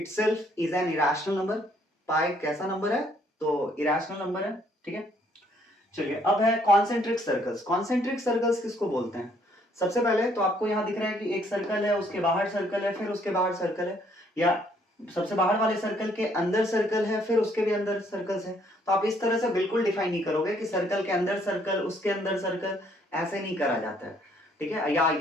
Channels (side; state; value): both; normal; correlation 0.66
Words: is an irrational number. Pi कैसा नंबर है? तो इरेशनल नंबर है, ठीक है। चलिए अब है कॉन्सेंट्रिक सर्कल्स। कॉन्सेंट्रिक सर्कल्स किसको बोलते हैं? सबसे पहले तो आपको यहां दिख रहा है कि एक सर्कल है, उसके बाहर सर्कल है, फिर उसके बाहर सर्कल है, या सबसे बाहर वाले सर्कल के अंदर सर्कल है, फिर उसके भी अंदर सर्कल्स है। तो आप इस तरह से बिल्कुल डिफाइन नहीं करोगे कि सर्कल के अंदर सर्कल, उसके अंदर सर्कल, ऐसे नहीं करा जाता है, ठीक है। या